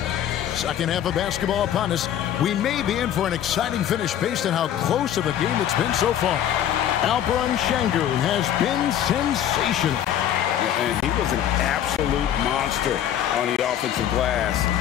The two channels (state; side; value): quieter; right; 10.6 dB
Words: Second half of basketball upon us. We may be in for an exciting finish based on how close of a game it's been so far. Alperen Sengun has been sensational. And he was an absolute monster on the offensive glass